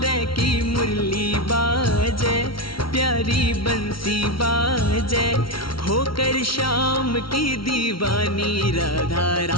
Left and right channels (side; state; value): right; late; 0.74 ms